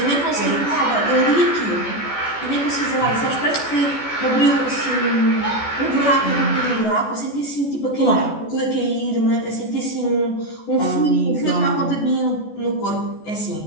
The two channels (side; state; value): right; late; 14 ms